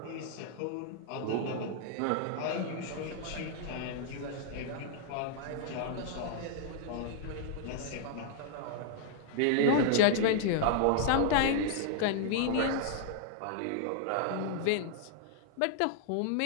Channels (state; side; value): different; both; correlation -0.01